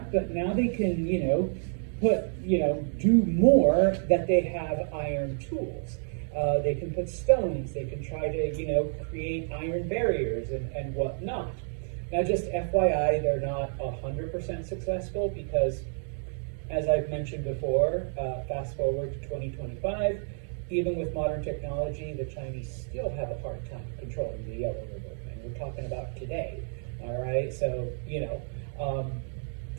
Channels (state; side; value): silent; left; 56 dB below the other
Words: but now they can, do more, that they have iron tools. They can put stones, they can try to, create iron barriers and whatnot. Now, just FYI, they're not 100% successful because, as I've mentioned before, fast forward to 2025, even with modern technology, the Chinese still have a hard time controlling the Yellow River, and we're talking about today, all right? So,